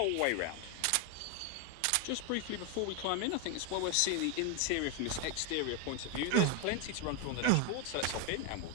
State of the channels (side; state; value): both; different; correlation 0.01